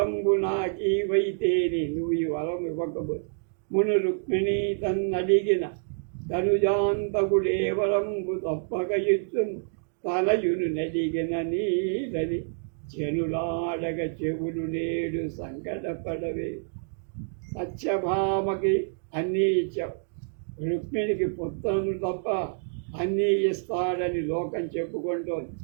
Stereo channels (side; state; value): left; silent; digital silence